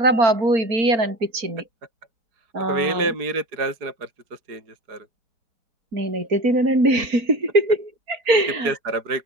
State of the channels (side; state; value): left; late; 4.4 ms